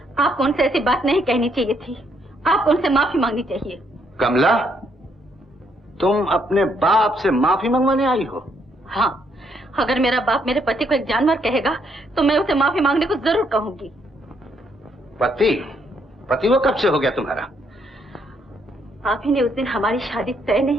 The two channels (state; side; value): normal; both; correlation 0.72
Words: आपको उनसे ऐसी बात नहीं कहनी चाहिए थी। आपको उनसे माफी मांगनी चाहिए। कमला, तुम अपने बाप से माफी मंगवाने आई हो? हाँ, अगर मेरा बाप मेरे पति को एक जानवर कहेगा तो मैं उसे माफी मांगने को जरूर कहूंगी। पति? पति वो कब से हो गया तुम्हारा? आप ही ने उस दिन हमारी शादी तय